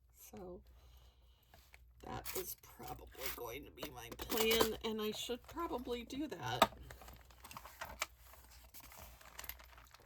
So that is probably going to be my plan, and I should probably do that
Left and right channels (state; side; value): identical; both; correlation 1.00